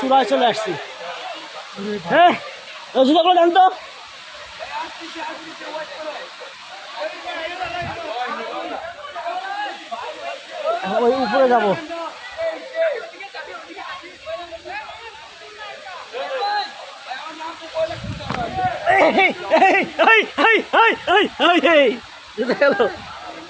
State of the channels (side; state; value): both; identical; correlation 1.00